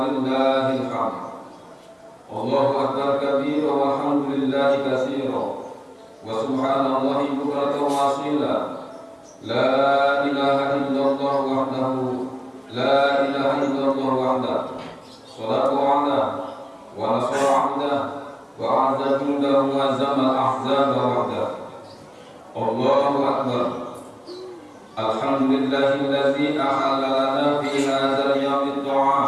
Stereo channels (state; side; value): identical; both; correlation 1.00